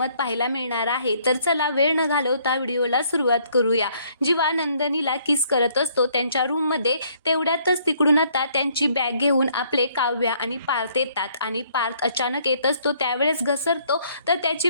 पाहायला मिळणार आहे। तर चला वेळ न घालवता व्हिडिओला सुरुवात करूया। जेव्हा नंदनीला किस करत असतो त्यांच्या रूममध्ये, तेवढ्यातच तिकडून आता त्यांची बॅग घेऊन आपले काव्या आणि पार्थ येतात आणि पार्थ अचानक येत असतो त्यावेळेस घसरतो तर त्याची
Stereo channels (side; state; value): both; inverted; correlation -0.65